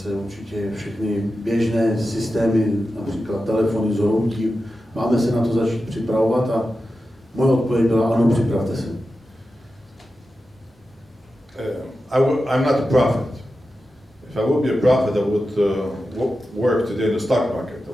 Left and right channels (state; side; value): normal; both; correlation 0.92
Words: určitě všechny běžné systémy, například telefony zhroutí. Máme se na to začít připravovat a moje odpověď byla, ano, připravte se. I'm not a prophet. If I would be a prophet, I would work today in the stock market. I